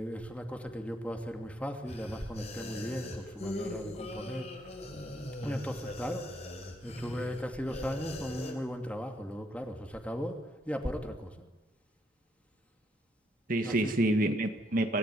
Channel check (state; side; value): normal; both; correlation 0.73